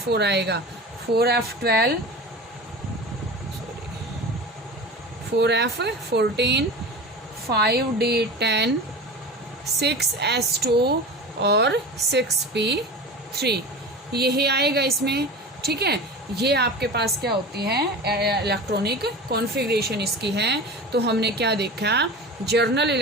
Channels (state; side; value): normal; both; correlation 0.32